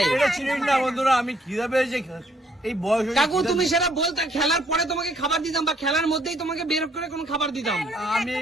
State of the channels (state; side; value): normal; both; correlation 0.66